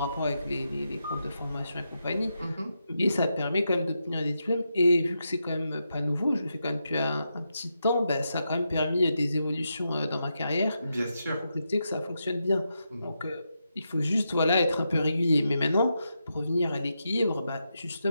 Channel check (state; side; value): inverted; both; correlation -0.85